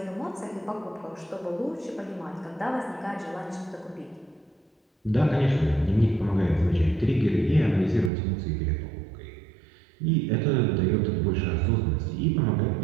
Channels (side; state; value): left; drops out; at 8.1 s